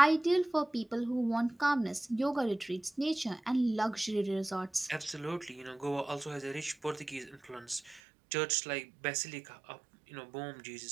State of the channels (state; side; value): drops out; left; at 8.0 s